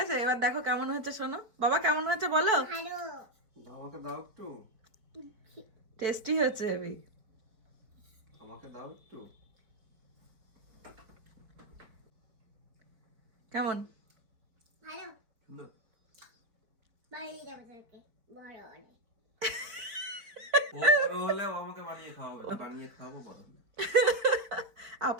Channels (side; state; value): left; late; 4.7 ms